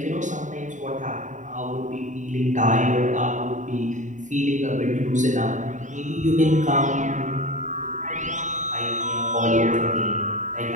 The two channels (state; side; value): late; left; 0.36 ms